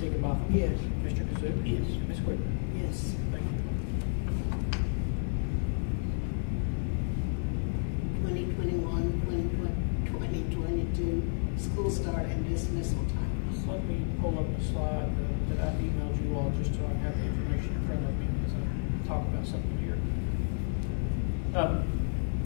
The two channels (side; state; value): right; silent; digital silence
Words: Yes. Mr. Kazook, Yes. and Ms. Wicker. Yes. Thank you all. 2022 school start and dismissal times. Let me pull up a slide that I've emailed you all just so I can have the information in front of me as I talk about something here. I'll